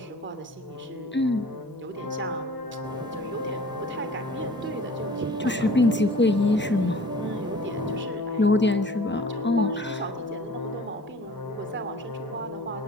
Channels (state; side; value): normal; both; correlation 0.46